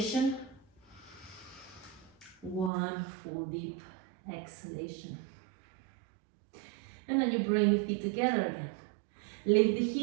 One full deep exhalation. And then you bring the feet together again. Lift the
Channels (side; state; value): left; drops out; at 2.7 s